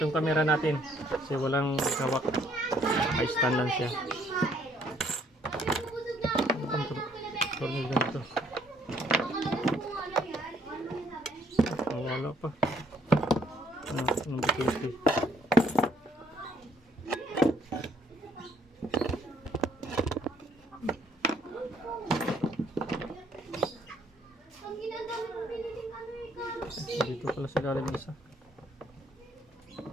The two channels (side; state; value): both; normal; correlation 0.65